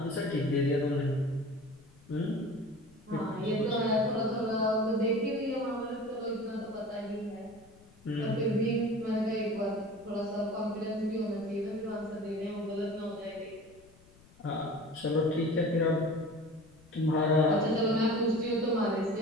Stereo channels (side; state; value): left; noise; rumble, 26 dB below the sound